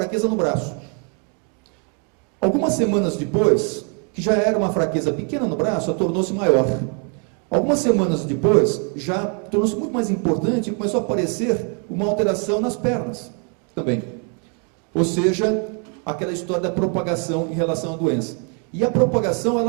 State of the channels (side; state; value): left; quieter; 39.1 dB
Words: no braço. Algumas semanas depois, que já era uma fraqueza pequena no braço, tornou-se maior. Algumas semanas depois, já tornou-se muito mais importante e começou a aparecer uma alteração nas pernas também. Ou seja, aquela história da propagação em relação à doença. E a propagação,